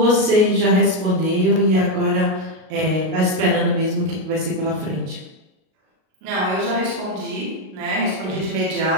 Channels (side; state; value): left; late; 38 ms